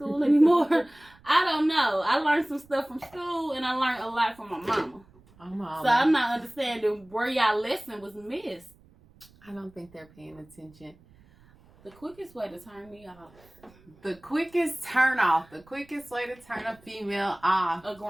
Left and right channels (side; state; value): right; noise; rumble, 27 dB below the sound